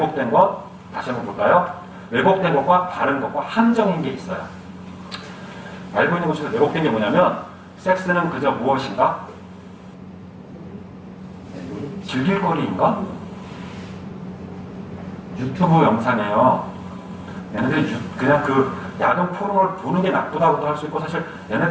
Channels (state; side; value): identical; both; correlation 1.00